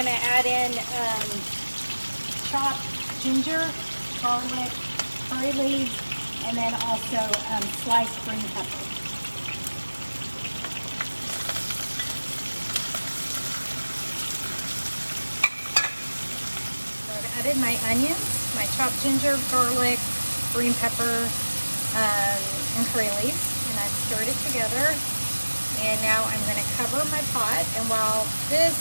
to add in chopped ginger, garlic, curry leaves, and then also sliced green pepper. So I've added my onions, my chopped ginger, garlic, green pepper, and curry leaves, and I've stirred it together. And now I'm going to cover my pot, and while this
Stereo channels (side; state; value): both; inverted; correlation -1.00